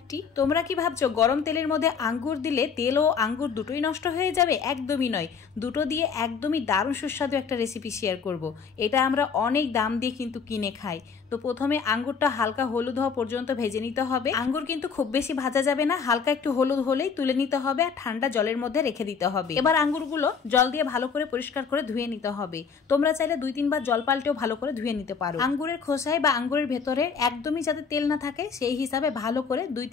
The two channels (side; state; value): right; quieter; 6.0 dB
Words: তোমরা কি ভাবছো গরম তেলের মধ্যে আঙ্গুর দিলে তেল ও আঙ্গুর দুটোই নষ্ট হয়ে যাবে? একদমই নয়, দুটো দিয়ে একদমই দারুণ সুস্বাদু একটা রেসিপি শেয়ার করব। এটা আমরা অনেক দাম দিয়ে কিন্তু কিনে খাই। তো প্রথমে আঙ্গুরটা হালকা হলুদ হওয়া পর্যন্ত ভেজে নিতে হবে। আঙ্গুর কিন্তু খুব বেশি ভাজা যাবে না, হালকা একটু হলুদ হলেই তুলে নিতে হবে আর ঠান্ডা জলের মধ্যে রেখে দিতে হবে। এবার আঙ্গুরগুলো জল দিয়ে ভালো করে পরিষ্কার করে ধুয়ে নিতে হবে। তোমরা চাইলে 2-3 বার জল পাল্টেও ভালো করে ধুয়ে নিতে পারো। আঙ্গুরের খোসায় বা আঙ্গুরের ভেতরে একদমই যাতে তেল না থাকে সেই হিসাবে ভালো করে